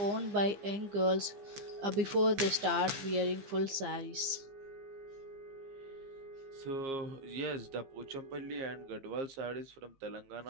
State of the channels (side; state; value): left; late; 15 ms